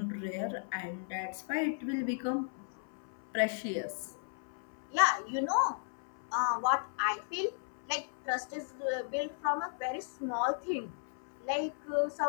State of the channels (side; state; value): right; silent; 54 dB below the other